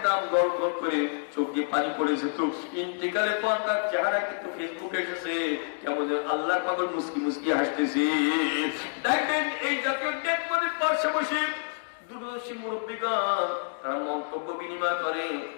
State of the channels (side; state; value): right; silent; digital silence